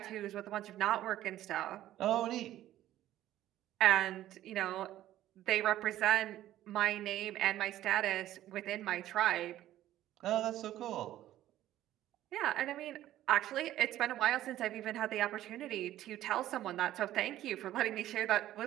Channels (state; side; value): quieter; left; 13.5 dB